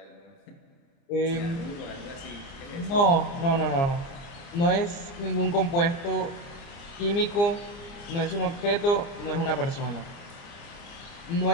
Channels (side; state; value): right; late; 30 ms